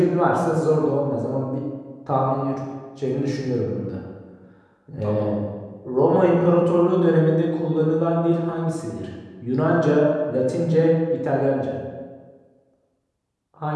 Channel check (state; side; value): identical; both; correlation 1.00